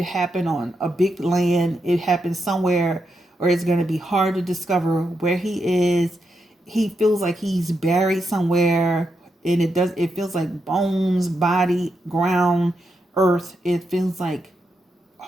on a big land. It happened somewhere where it's going to be hard to discover where he is. He feels like he's buried somewhere, and it feels like bones, body, ground, earth. It feels like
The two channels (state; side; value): normal; both; correlation 0.84